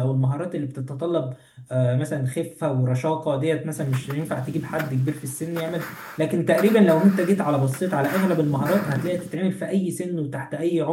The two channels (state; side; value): identical; both; correlation 1.00